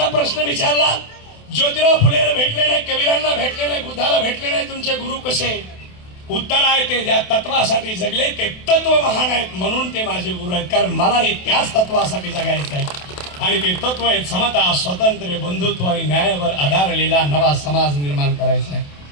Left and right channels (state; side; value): late; right; 28 ms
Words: प्रश्न विचारला, ज्योतिराव फुलेला भेटले नाही, कबीरांना भेटले नाही, बुद्धाला भेटले नाही, तुमचे गुरु कसे? उत्तर आहे ते ज्या तत्वासाठी जगले ते तत्व महान आहेत म्हणून ते माझे गुरु आहेत. कारण मलाही त्याच तत्वासाठी जगायचं आहे आणि ते तत्व आहेत समता, स्वातंत्र्य, बंधुत्व आणि न्यायावर आधारलेला नवा समाज निर्माण करायचा आहे.